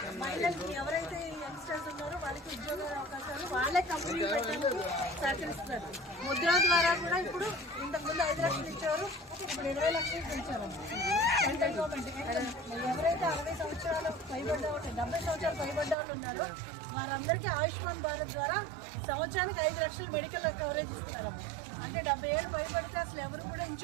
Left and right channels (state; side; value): drops out; left; at 16.0 s